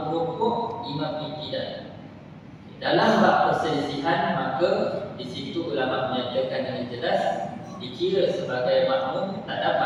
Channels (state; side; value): identical; both; correlation 1.00